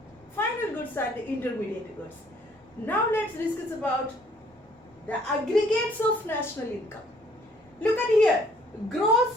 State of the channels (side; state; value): both; normal; correlation 0.61